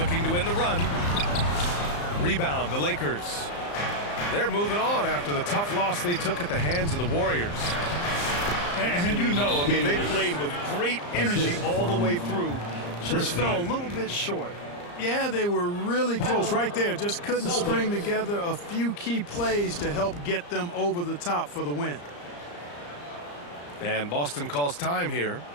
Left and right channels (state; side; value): late; right; 34 ms